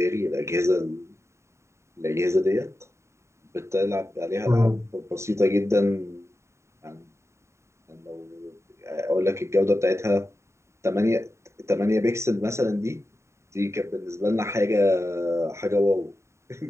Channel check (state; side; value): late; left; 0.14 ms